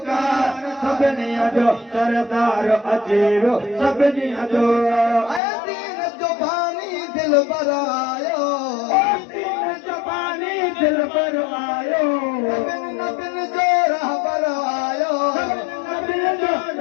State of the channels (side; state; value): right; drops out; at 5.4 s